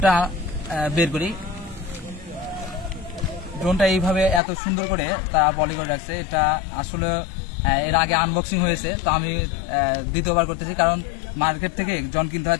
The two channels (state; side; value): drops out; right; at 4.4 s